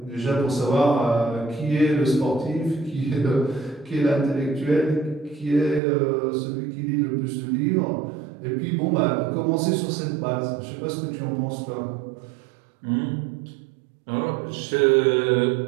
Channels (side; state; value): left; drops out; at 5.8 s